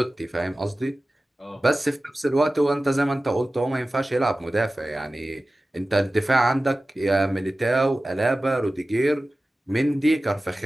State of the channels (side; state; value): both; normal; correlation 0.96